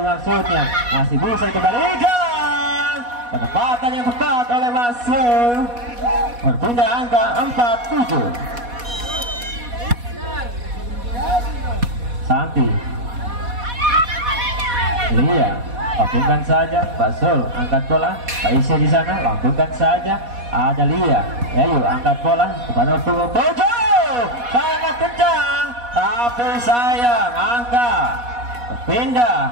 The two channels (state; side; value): late; left; 4.1 ms